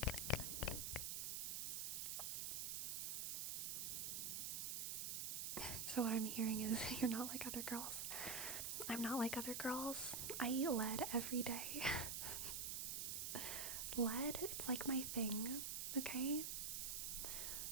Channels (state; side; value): noise; right; hiss, 1 dB below the sound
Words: So what I'm hearing is you're not like other girls. I'm not like other girls. I eat lead every day. Lead, it's like my thing, okay?